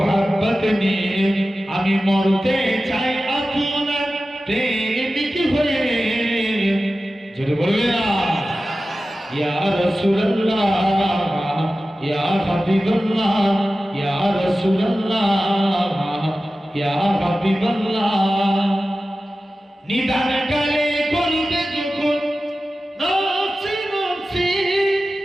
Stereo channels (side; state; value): both; normal; correlation 0.95